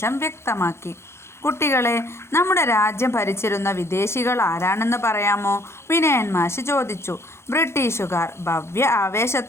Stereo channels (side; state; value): right; late; 0.13 ms